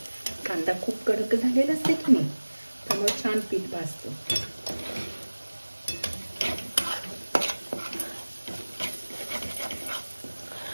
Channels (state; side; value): inverted; both; correlation -1.00